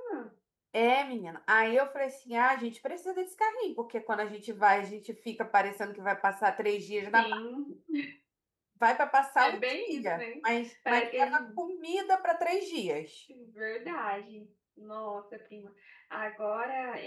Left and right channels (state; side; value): identical; both; correlation 1.00